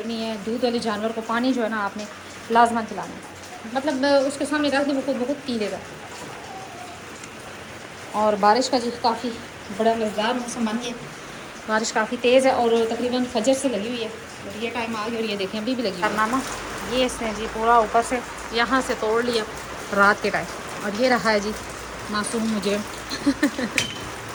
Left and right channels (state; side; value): identical; both; correlation 1.00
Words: है, दूध वाले जानवर को पानी जो है ना आपने लाजमन पिलाना है। मतलब उसके सामने रख दें वो खुद बहुत पी लेगा। और बारिश का जी काफ़ी बड़ा मज़ेदार मौसम बन गया, बारिश काफ़ी तेज़ है और तकरीबन फजर से लगी हुई है, और ये टाइम आ गया और ये देखें अभी भी लगी हुई है। कारनामा ये इसने जी पूरा ऊपर से यहाँ से तोड़ लिया रात के टाइम, और ये रहा है जी मासूम मुजरिम